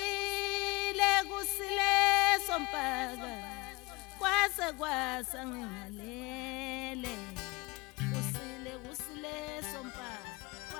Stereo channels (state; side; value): quieter; right; 24.6 dB